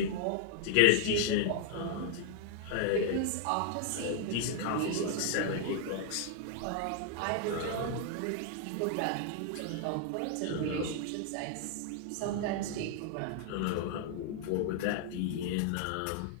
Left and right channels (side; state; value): both; different; correlation 0.00